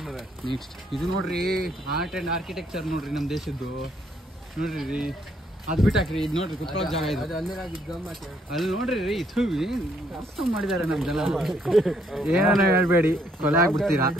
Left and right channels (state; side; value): normal; both; correlation 0.70